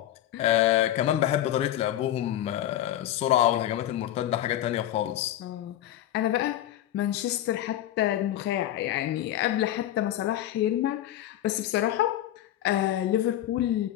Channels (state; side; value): quieter; right; 12.7 dB